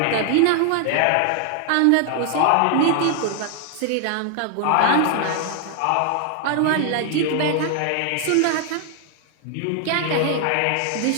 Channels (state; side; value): different; both; correlation 0.00